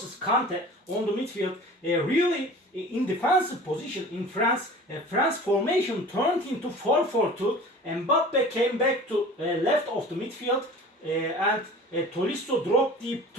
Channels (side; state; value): both; normal; correlation 0.41